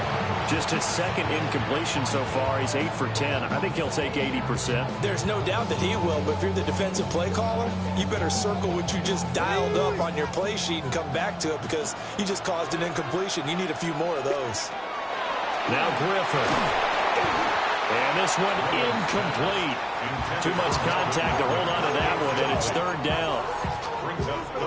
Just his second incompletion so far. He's 8 for 10. I think he'll take 80%. There's no doubt that he will, but if you're the defensive play caller, you better circle what you just dialed up on your play sheet and come back to it because you just caused an incompletion. You need a few more of those. Now Griffin. And this one incomplete. Too much contact to hold on to that one, and it's 3rd down.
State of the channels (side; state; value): both; identical; correlation 1.00